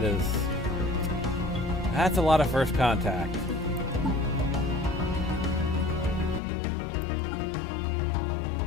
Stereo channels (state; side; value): drops out; right; at 6.4 s